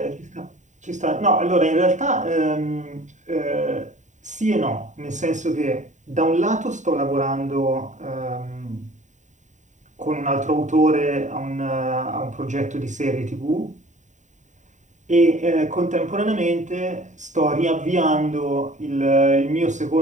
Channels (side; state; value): left; late; 0.35 ms